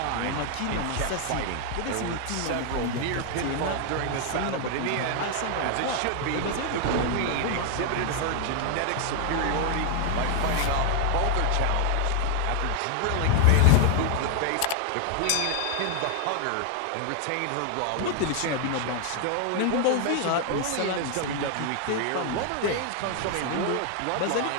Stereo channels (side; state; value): both; different; correlation 0.00